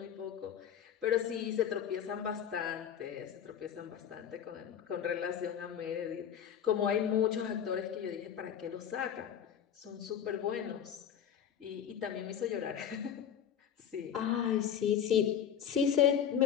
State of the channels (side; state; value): right; quieter; 9.0 dB